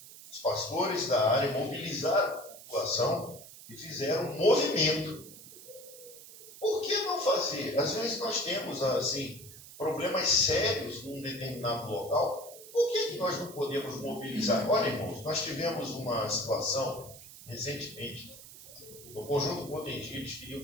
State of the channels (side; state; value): right; noise; hiss, 17 dB below the sound